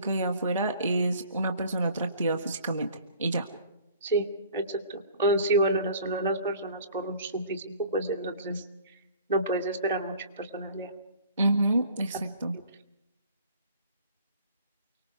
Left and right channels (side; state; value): both; inverted; correlation -0.50